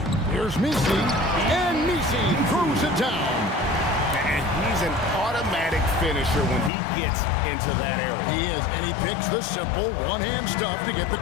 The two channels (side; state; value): right; drops out; at 6.7 s